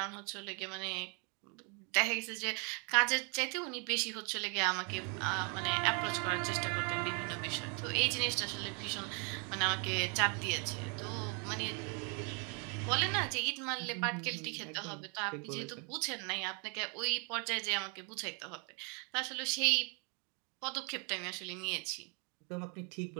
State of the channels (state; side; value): quieter; left; 36.2 dB